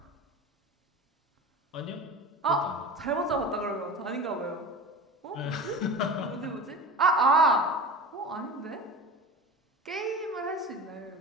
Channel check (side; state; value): both; normal; correlation 0.32